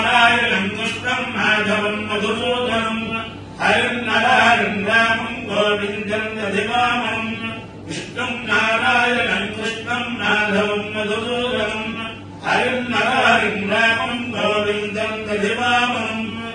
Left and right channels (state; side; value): identical; both; correlation 1.00